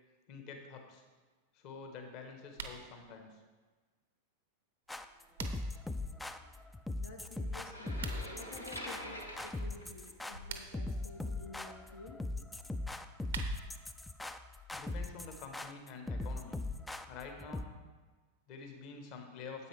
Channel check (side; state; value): both; normal; correlation 0.61